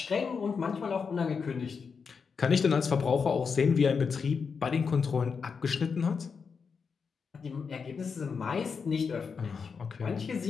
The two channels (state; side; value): quieter; right; 5.7 dB